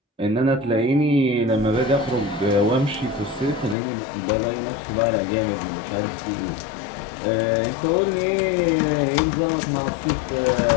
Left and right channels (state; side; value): drops out; right; at 3.8 s